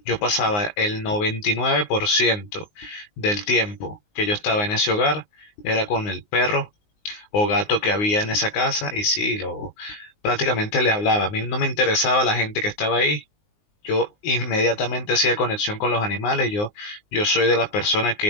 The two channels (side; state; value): right; late; 19 ms